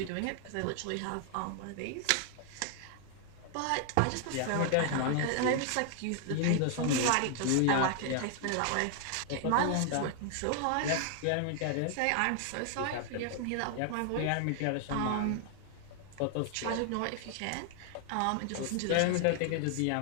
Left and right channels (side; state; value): both; different; correlation 0.00